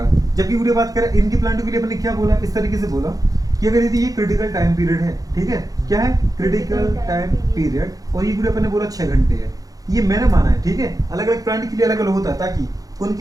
जबकि वीडियो बात करें इनकी प्लांटों के लिए अपने क्या बोला, इस तरीके से बोला कि अगर यदि ये क्रिटिकल टाइम पीरियड है, ठीक है, क्या है क्रिटिकल टाइम पीरियड, और ये वीडियो अपन ने बोला 6 घंटे है, ये मैंने माना है, ठीक है। अलग अलग प्लांट के लिए अलग अलग होता है, ताकि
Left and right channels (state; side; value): late; left; 0.17 ms